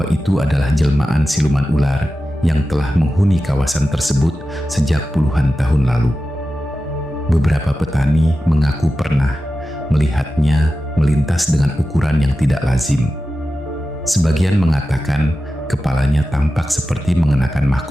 itu adalah jelmaan siluman ular yang telah menghuni kawasan tersebut sejak puluhan tahun lalu. Beberapa petani mengaku pernah melihatnya melintas dengan ukuran yang tidak lazim. Sebagian mengatakan kepalanya tampak seperti mengenakan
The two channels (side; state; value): both; normal; correlation 0.93